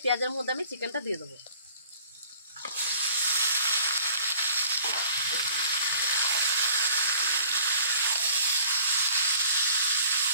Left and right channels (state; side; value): inverted; both; correlation -0.52